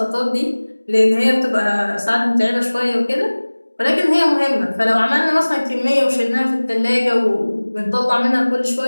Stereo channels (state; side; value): inverted; both; correlation -1.00